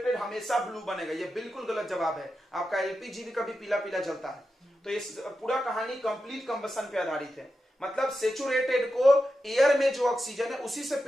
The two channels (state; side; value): normal; both; correlation 0.89